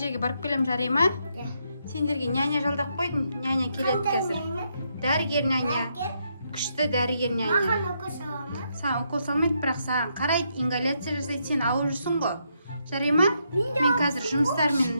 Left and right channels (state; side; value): inverted; both; correlation -0.78